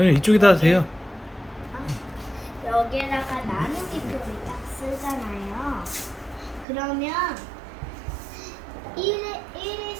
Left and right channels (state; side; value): drops out; left; at 6.7 s